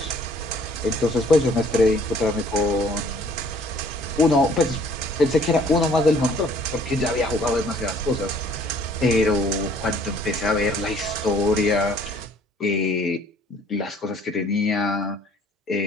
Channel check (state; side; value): normal; both; correlation 0.57